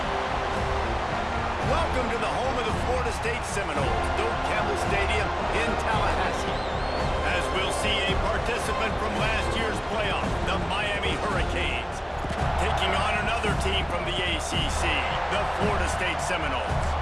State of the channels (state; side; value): identical; both; correlation 1.00